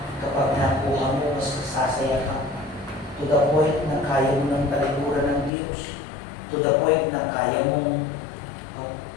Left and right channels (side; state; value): right; drops out; at 5.5 s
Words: kapag nakuha mo, mas sasaya ka. To the point na kaya mo ng talikuran ng Diyos. To the point na kaya mong